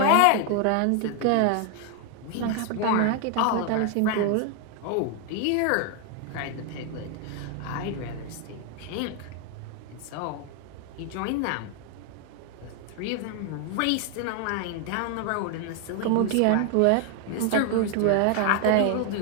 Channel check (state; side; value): different; both; correlation 0.00